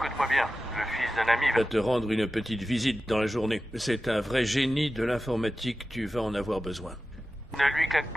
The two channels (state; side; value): normal; both; correlation 0.94